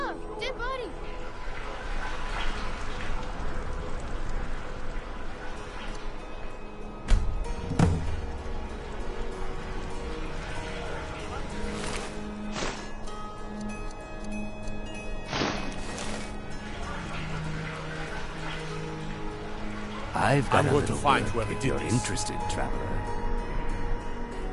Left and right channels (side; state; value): both; identical; correlation 1.00